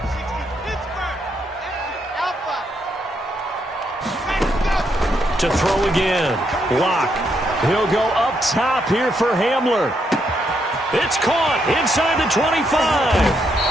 To throw again. Lock. He'll go up top here for Hamler. It's caught inside the 25.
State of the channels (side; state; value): both; normal; correlation 0.77